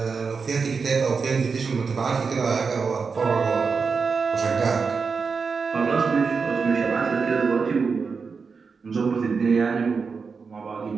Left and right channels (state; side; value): quieter; left; 5.1 dB